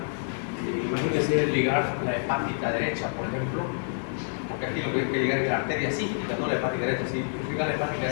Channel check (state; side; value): silent; right; digital silence